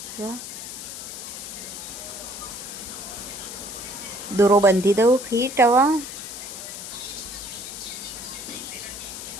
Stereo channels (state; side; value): noise; left; hiss, 9 dB below the sound